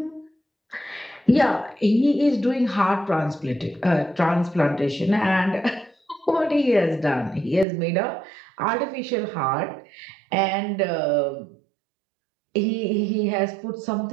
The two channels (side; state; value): left; drops out; at 7.7 s